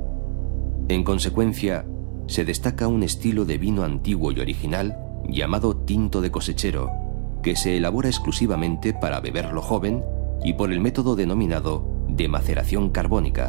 En consecuencia, se destaca un estilo de vino antiguo y original llamado tinto de cosechero, que se elabora exclusivamente para beberlo joven y por el método denominado de maceración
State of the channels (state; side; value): silent; left; digital silence